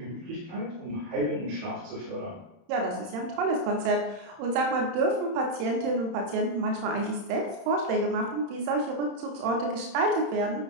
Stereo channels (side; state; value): left; late; 31 ms